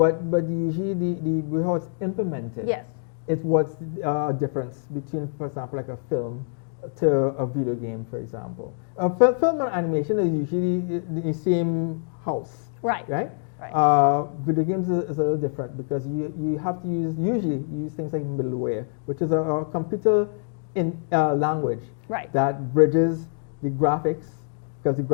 usually the how it's implemented. It's what's the difference between, for example, like a film to a video game, for example. Film and animation is usually the same house. Right. Video games is a little different because you have to usually use things like middleware, which is a computer in language that bridges the graphics, because the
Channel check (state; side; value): silent; right; digital silence